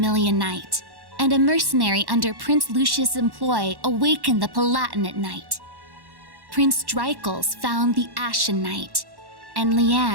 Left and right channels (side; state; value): left; late; 1.1 ms